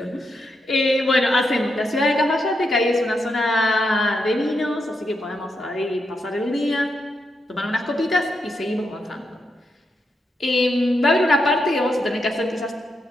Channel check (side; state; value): both; normal; correlation 0.83